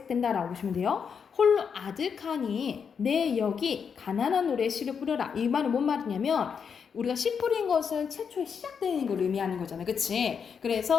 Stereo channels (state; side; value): quieter; right; 6.6 dB